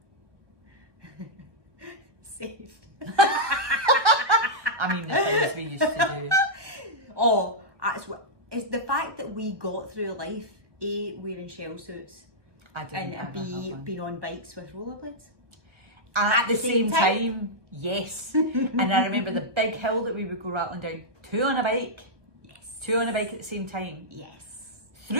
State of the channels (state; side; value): late; left; 1.0 ms